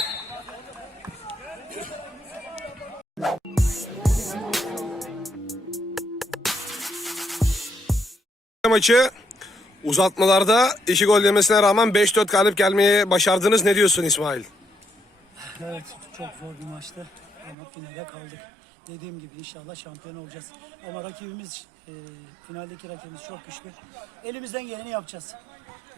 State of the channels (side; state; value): left; drops out; at 17.6 s